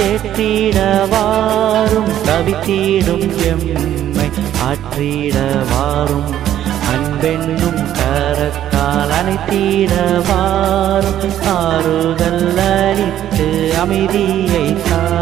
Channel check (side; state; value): left; quieter; 11.6 dB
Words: கவித்தீடும் எம்மை ஆற்றிடவாரும், அன்பெண்ணும் கரத்தால் அணைத்திடவாரும், ஆறுதல் அளித்து அமைதியை